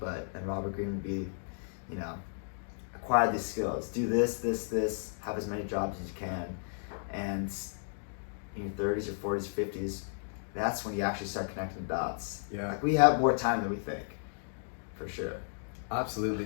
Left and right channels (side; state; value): right; silent; digital silence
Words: then Robert Greene would be, acquire these skills, do this, have as many jobs as you can, and in your 30s or 40s or 50s, that's when you actually start connecting the dots. Yeah. Like, we have more time than we think, for sure. Absolutely.